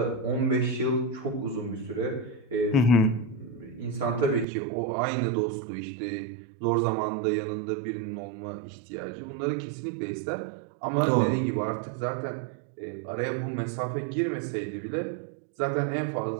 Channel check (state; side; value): drops out; left; at 4.5 s